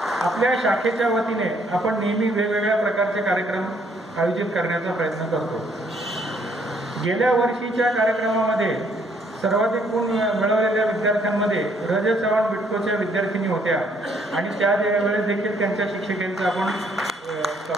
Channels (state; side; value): normal; both; correlation 0.67